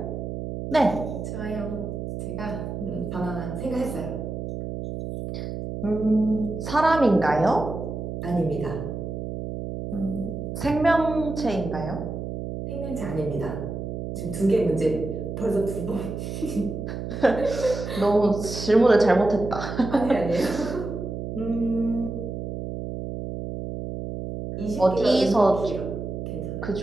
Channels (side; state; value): right; noise; hum, 6 dB below the sound